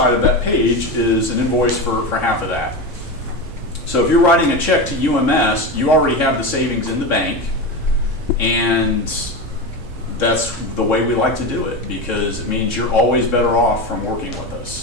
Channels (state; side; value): normal; both; correlation 0.20